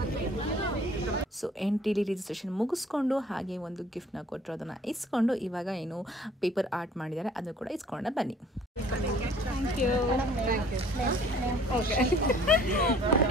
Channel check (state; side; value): normal; both; correlation 0.54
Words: ಸೊ ಎಂಟ್ರಿಲಿ ರಿಜಿಸ್ಟ್ರೇಷನ್ ಮುಗಿಸ್ಕೊಂಡು ಹಾಗೆ ಒಂದು ಗಿಫ್ಟ್ನ ಕೊಟ್ಟರು, ಅದನ್ನು ಇಸ್ಕೊಂಡು ಇವಾಗ ಏನು ಪೇಪರ್ ಆರ್ಟ್ ಮಾಡಿದ್ದಾರೆ ಅದನ್ನು ಕೂಡ ಇಸ್ಕೊಂಡ ಬನ್ನಿ. Thank you. Okay,